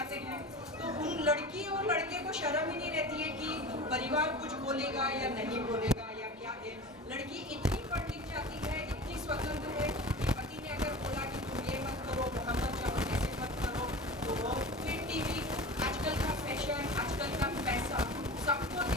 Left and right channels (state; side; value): normal; both; correlation 0.34